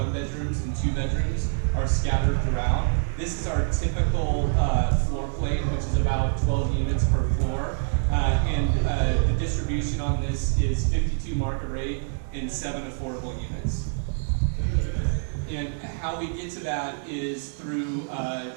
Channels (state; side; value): silent; left; digital silence